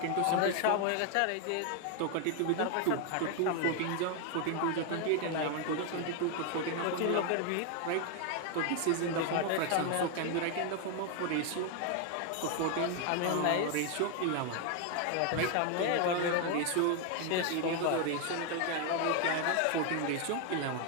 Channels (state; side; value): different; both; correlation 0.01